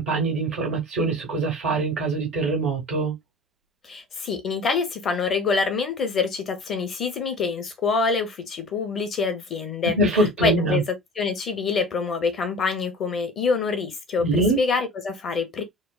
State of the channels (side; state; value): both; normal; correlation 0.39